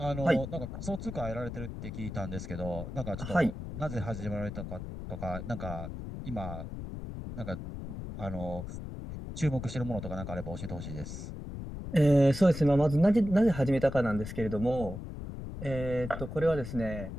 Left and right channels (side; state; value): left; noise; rumble, 8 dB below the sound